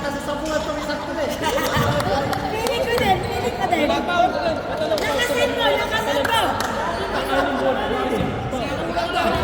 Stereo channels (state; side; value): identical; both; correlation 1.00